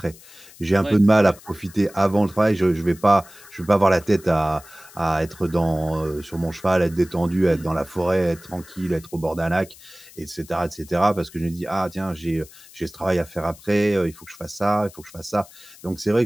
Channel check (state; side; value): noise; left; hiss, 21 dB below the sound